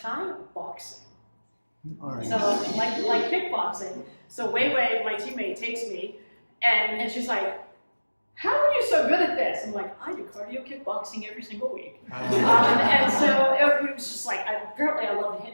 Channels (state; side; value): inverted; both; correlation -1.00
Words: boxing. All right. So like kickboxing. So Wei, my teammate, takes me and she's like, "How are you so good at this?" I'm like, "I do cardio kickboxing every single week." And so it was just like, apparently I love to